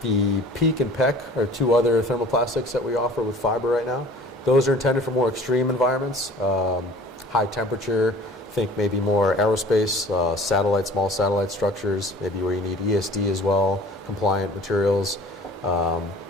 The PEEK and PEC are two other thermoplastics that we offer with fiber right now. Those are intended for more extreme environments, high temperature, think maybe more aerospace, small satellite structures, maybe where you need ESD as well, compliant materials,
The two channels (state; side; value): normal; both; correlation 0.46